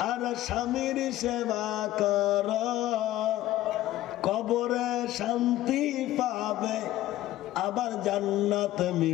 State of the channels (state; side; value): quieter; right; 14.8 dB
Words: আর স্বামীর সেবা করো, কবরে শান্তি পাবে, আবার জান্নাত